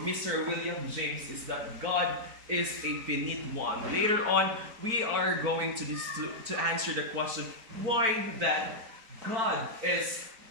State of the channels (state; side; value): late; left; 4.4 ms